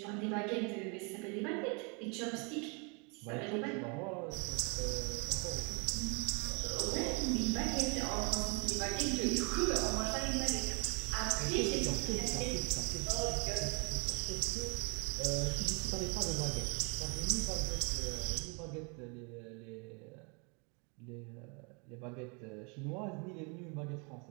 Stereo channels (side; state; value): left; quieter; 33.3 dB